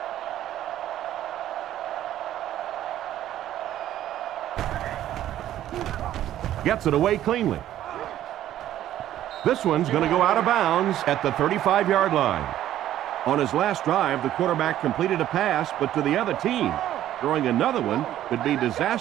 Gets it away cleanly. This one's going to go out of bounds at the 35-yard line. On his last drive, the quarterback completed a pass, but to the other team. Throwing another one could be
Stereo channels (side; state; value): left; quieter; 12.4 dB